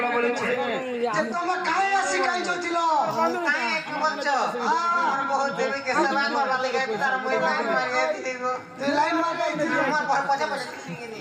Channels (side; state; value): both; identical; correlation 1.00